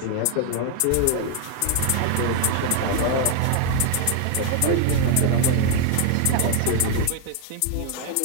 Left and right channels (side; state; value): both; different; correlation 0.00